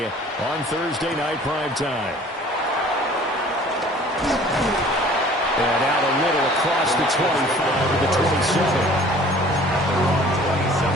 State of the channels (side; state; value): both; normal; correlation 0.50